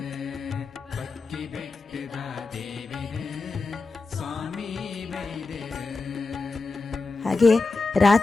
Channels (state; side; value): quieter; right; 3.8 dB